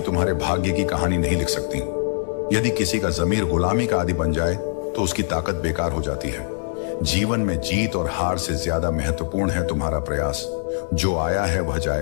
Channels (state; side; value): silent; right; 64 dB below the other